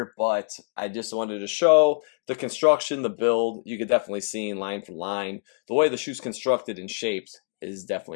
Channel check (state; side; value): silent; right; digital silence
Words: but I just wanted to show the construction, the build. You could definitely see in line for line, the way the shoe's constructed and shaped is